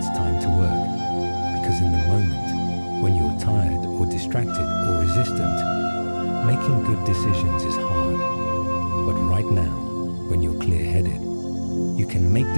time to work. Because in the moment, when you're tired or distracted or resistant, making good decisions is hard. But right now, when you're clear-headed, you can make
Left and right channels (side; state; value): both; inverted; correlation -1.00